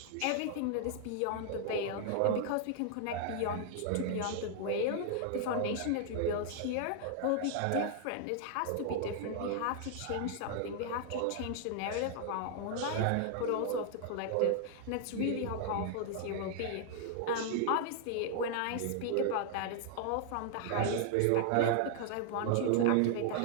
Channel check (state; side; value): different; both; correlation -0.01